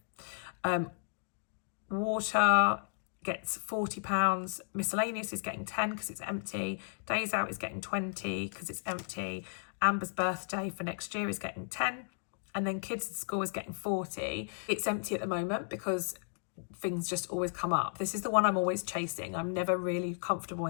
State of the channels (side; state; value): right; silent; digital silence